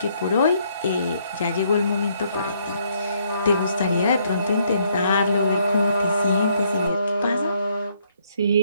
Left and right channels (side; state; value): both; inverted; correlation -0.69